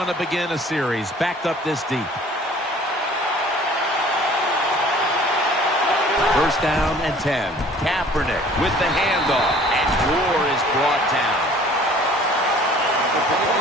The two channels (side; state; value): both; normal; correlation 0.51